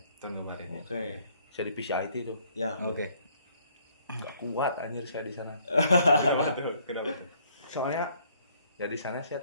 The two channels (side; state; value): both; inverted; correlation -0.64